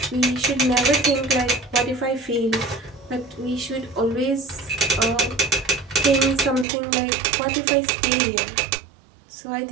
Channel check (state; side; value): drops out; left; at 6.7 s